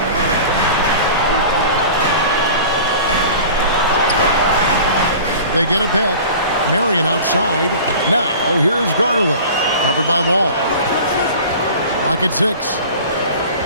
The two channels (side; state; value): both; inverted; correlation -0.40